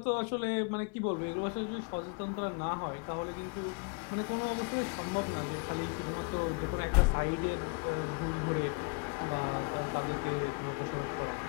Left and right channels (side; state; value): right; quieter; 32.9 dB